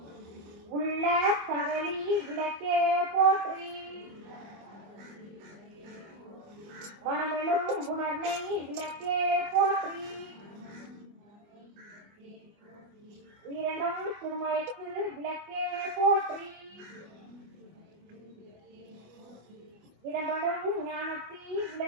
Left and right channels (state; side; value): late; left; 25 ms